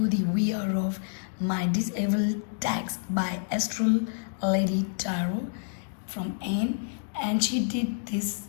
the VR of my disabled tags by Astral Lady Tarot from Anne, and she did this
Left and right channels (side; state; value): right; silent; digital silence